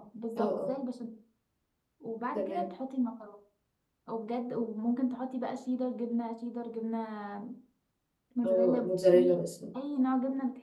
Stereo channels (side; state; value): both; identical; correlation 1.00